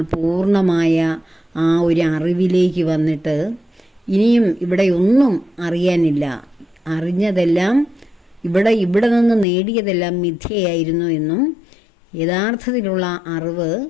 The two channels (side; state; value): right; drops out; at 9.5 s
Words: പൂർണ്ണമായ ആ ഒരു അറിവിലേക്ക് വന്നിട്ട് ഇനിയും ഇവിടെ ഒന്നും അറിയാനില്ല, അറിഞ്ഞതെല്ലാം ഇവിടെ നിന്ന് നേടിയതെല്ലാം മിഥ്യയായിരുന്നു എന്നും യഥാർത്ഥത്തിലുള്ള അറിവ്